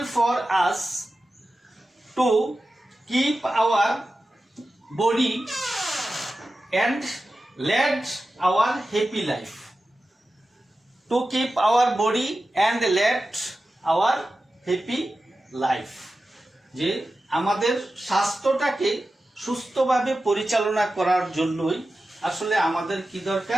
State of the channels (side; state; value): both; normal; correlation 0.93